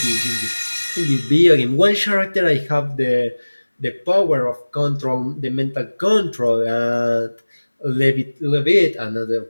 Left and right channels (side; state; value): both; inverted; correlation -1.00